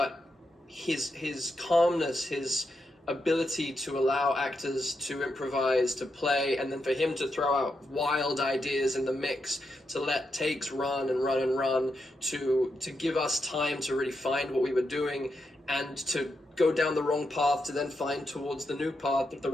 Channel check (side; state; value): both; normal; correlation 0.84